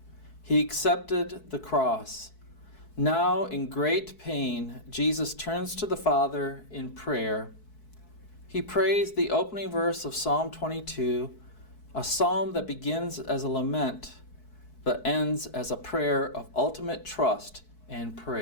He accepted the cross. Now, in great pain, Jesus turns to the Father in prayer. He prays the opening verse of Psalm 22, a psalm that begins as a lament but ends as a prayer of ultimate trust and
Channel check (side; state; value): right; late; 4.6 ms